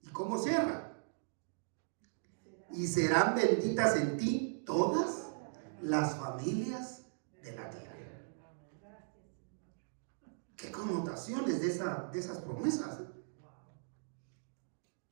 ¿Y cómo cierra? Y serán benditas en ti todas las familias de la tierra. ¿Qué connotaciones de esas promesas?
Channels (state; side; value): silent; left; digital silence